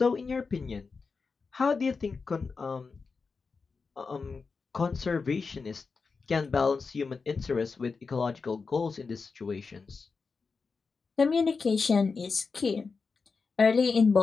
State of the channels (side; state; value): right; quieter; 4.7 dB